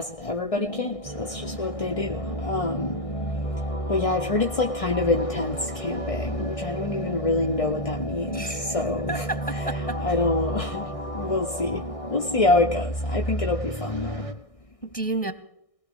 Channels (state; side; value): late; right; 1.6 ms